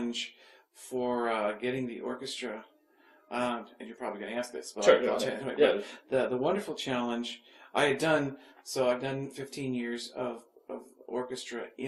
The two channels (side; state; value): both; identical; correlation 1.00